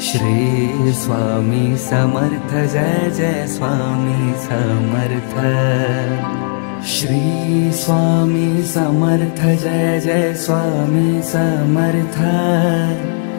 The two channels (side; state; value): right; silent; digital silence